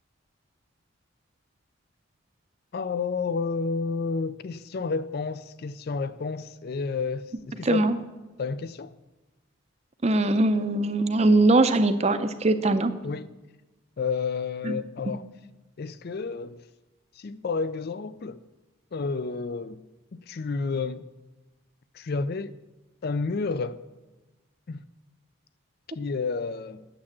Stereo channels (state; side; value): normal; both; correlation 0.46